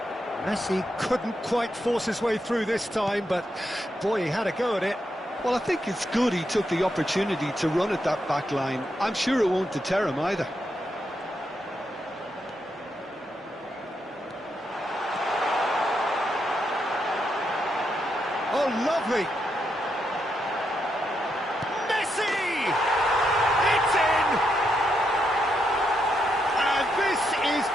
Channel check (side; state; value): both; normal; correlation 0.81